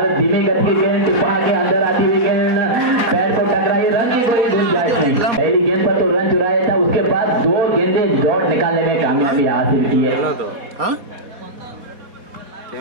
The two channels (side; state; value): left; late; 4.2 ms